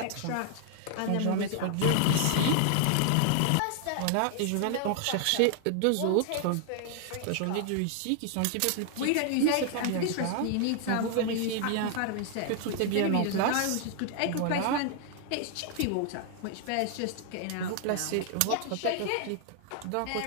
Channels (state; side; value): different; both; correlation 0.00